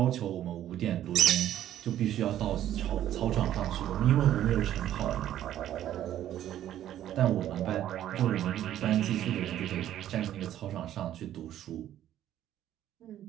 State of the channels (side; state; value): left; quieter; 11.9 dB